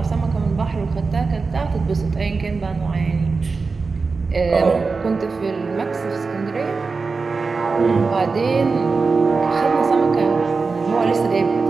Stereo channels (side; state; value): left; quieter; 4.4 dB